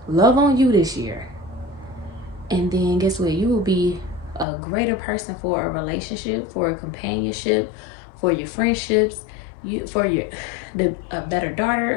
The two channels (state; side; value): drops out; right; at 4.5 s